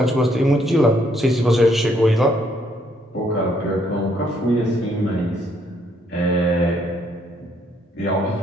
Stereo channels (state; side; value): normal; both; correlation 0.70